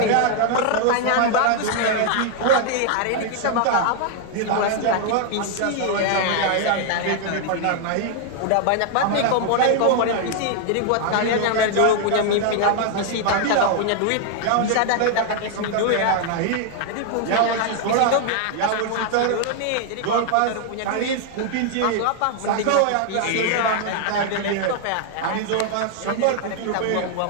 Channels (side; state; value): both; different; correlation 0.00